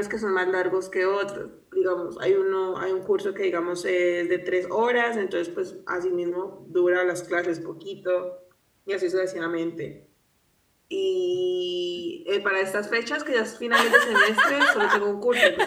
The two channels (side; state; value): both; identical; correlation 1.00